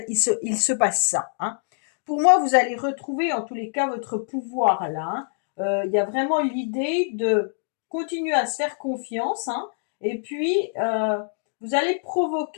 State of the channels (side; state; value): right; silent; 62 dB below the other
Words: il se passe ça, hein. Pour moi, vous allez retrouver en tous les cas votre pouvoir là, hein. Il y a vraiment l'idée de continuer à se faire confiance, hein, et puis vous allez